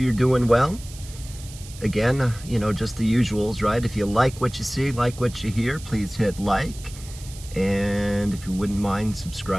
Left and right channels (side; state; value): right; noise; hiss, 17 dB below the sound